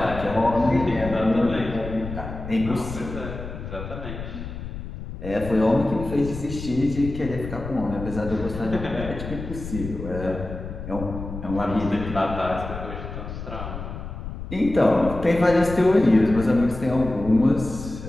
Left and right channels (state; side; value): noise; left; rumble, 9 dB below the sound